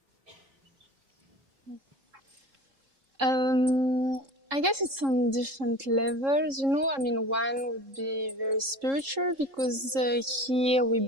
I guess it's on different levels, you know. I mean, one would be very spiritual because here we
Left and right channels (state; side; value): late; left; 3.7 ms